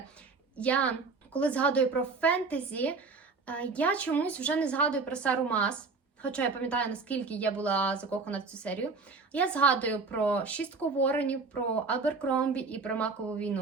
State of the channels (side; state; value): left; quieter; 4.3 dB